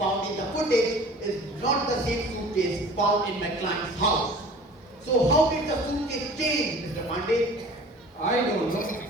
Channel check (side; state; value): both; normal; correlation 0.44